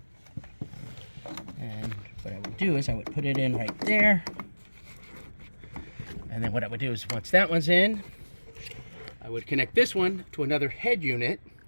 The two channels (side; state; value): both; inverted; correlation -1.00